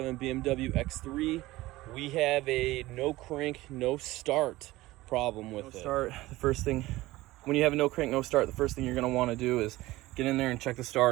BMW X3. We have a no crank, no start problem with it. The first thing, when you have a no crank, no start, the first thing you're gonna wanna do is get in there and check the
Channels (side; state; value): left; quieter; 18.2 dB